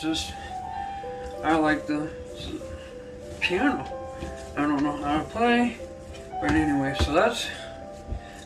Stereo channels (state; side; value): identical; both; correlation 1.00